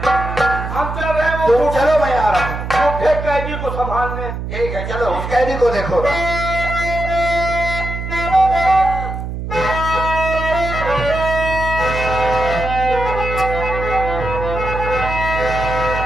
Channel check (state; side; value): noise; right; hum, 6 dB below the sound